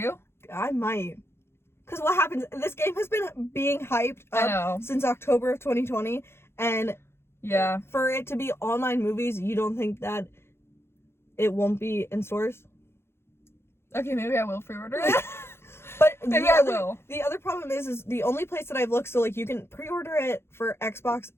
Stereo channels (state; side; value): late; right; 0.12 ms